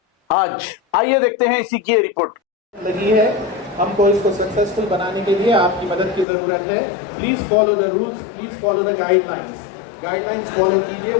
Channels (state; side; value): drops out; right; at 6.2 s